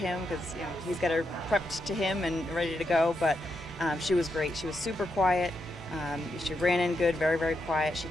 because he's got her prepped to him and ready to go. But she was great. She was super quiet. She ran in good, very, very quiet. She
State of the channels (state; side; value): normal; both; correlation 0.83